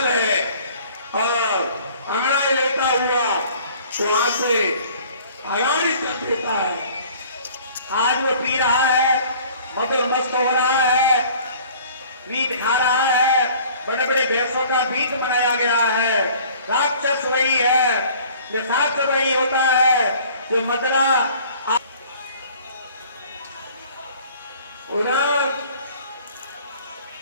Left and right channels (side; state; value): both; inverted; correlation -0.51